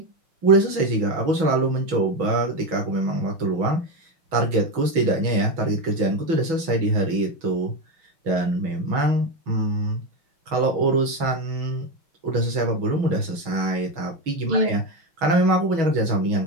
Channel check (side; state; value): left; late; 6.2 ms